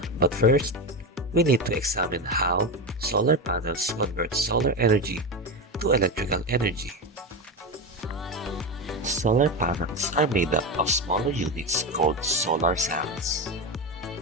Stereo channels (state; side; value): normal; both; correlation 0.17